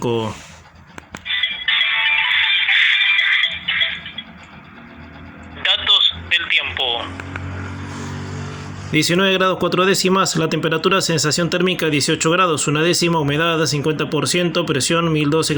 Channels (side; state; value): both; identical; correlation 1.00